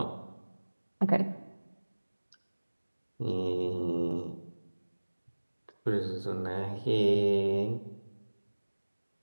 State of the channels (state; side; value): inverted; both; correlation -1.00